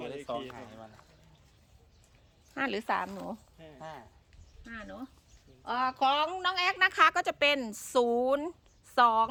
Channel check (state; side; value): identical; both; correlation 1.00